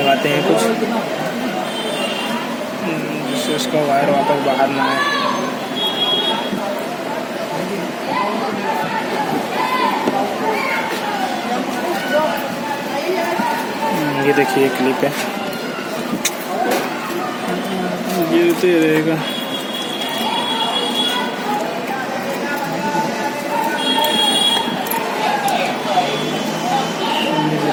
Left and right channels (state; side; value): identical; both; correlation 1.00